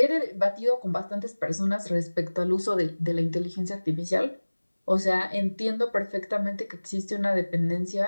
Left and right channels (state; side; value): inverted; both; correlation -1.00